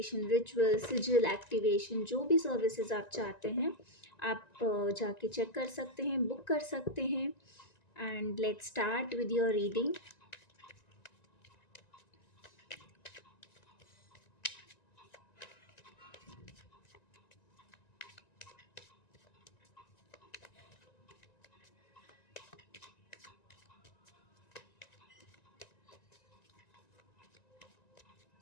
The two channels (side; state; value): right; late; 1.9 ms